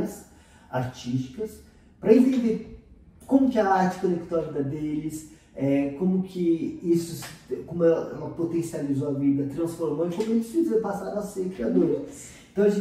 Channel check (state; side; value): identical; both; correlation 1.00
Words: artísticas, para entender como que a arte conectou a vida deles, como que isso, como ela potencializou a vida, transformou e como eles passaram a ser criadores. Então a